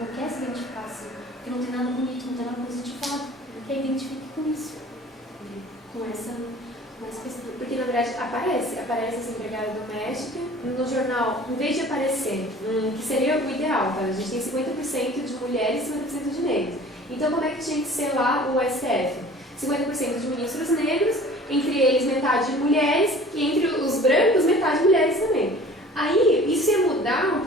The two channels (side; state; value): both; normal; correlation 0.46